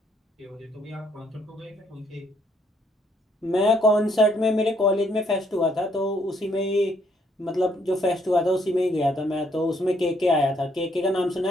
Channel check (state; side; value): normal; both; correlation 0.70